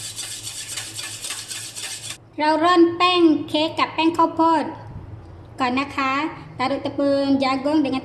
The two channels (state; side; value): identical; both; correlation 1.00